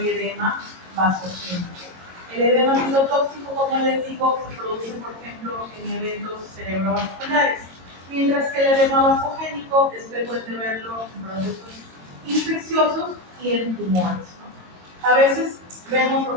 edema vasogénico. El edema citotóxico, como les digo, se produce, por ejemplo, en eventos cerebrovasculares, mientras que el edema vasogénico es frecuente verlo en procesos infecciosos y en tumores, ¿no? A veces vemos, por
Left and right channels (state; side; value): late; left; 22 ms